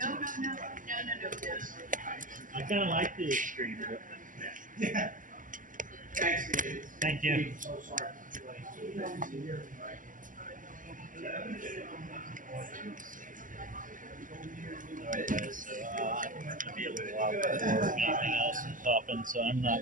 I kind of like the extreme, but Yeah. Thanks, David. thank you. I'm so sorry. Alright, so I'm going to be a little while before anything else is popping, so I'm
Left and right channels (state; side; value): late; left; 0.38 ms